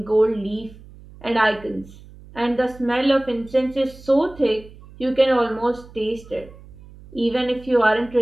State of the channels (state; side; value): noise; right; hum, 20 dB below the sound